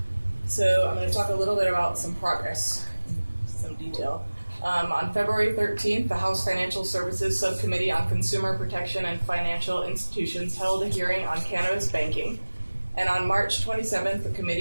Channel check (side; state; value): both; inverted; correlation -1.00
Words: So I'm going to talk a little bit about some progress, some detail. On February 13th, the House Financial Services Subcommittee on Consumer Protection and Financial Institutions held a hearing on cannabis banking. And on March 27th, the